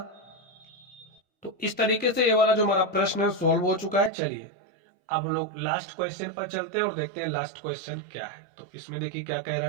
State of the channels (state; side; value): drops out; left; at 4.1 s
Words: तो इस तरीके से ये वाला जो हमारा प्रश्न है सॉल्व हो चुका है। चलिए अब हम लोग लास्ट क्वेश्चन पर चलते हैं और देखते हैं लास्ट क्वेश्चन क्या है। तो इसमें देखिए क्या कह रहा